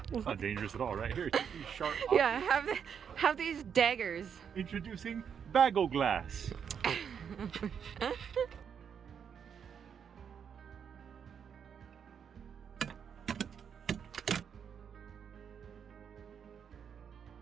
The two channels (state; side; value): quieter; left; 7.5 dB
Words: It's not dangerous at all, right? Here, take these sharp objects. Yeah, have these daggers. Introducing Bagel Glass.